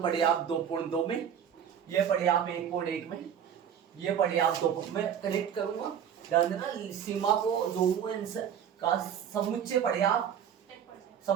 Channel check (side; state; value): left; quieter; 8.6 dB